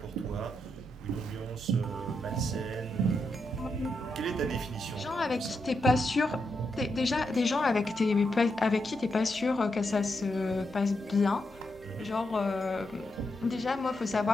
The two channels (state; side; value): normal; both; correlation 0.83